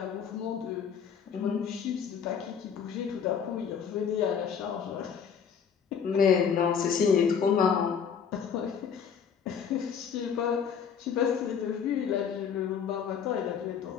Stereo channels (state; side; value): quieter; right; 7.2 dB